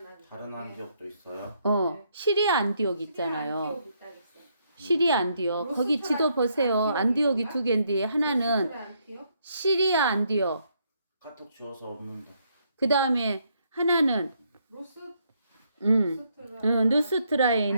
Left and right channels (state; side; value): inverted; both; correlation -0.73